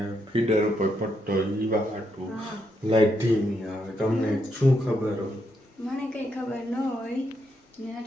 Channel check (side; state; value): both; normal; correlation 0.79